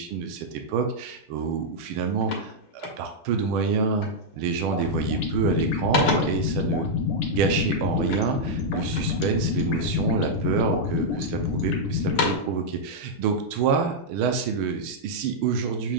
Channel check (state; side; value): normal; both; correlation -0.05